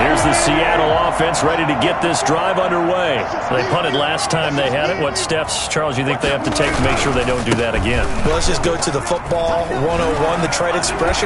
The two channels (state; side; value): identical; both; correlation 1.00